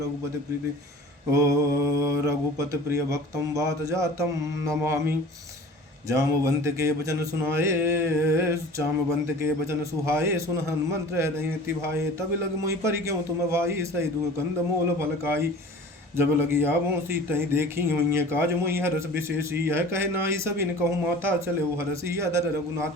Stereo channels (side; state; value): both; normal; correlation 0.42